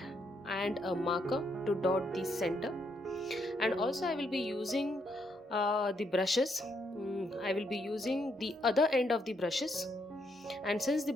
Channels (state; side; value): normal; both; correlation 0.75